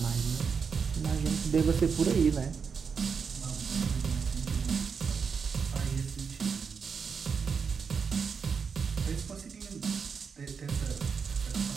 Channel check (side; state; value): left; quieter; 5.9 dB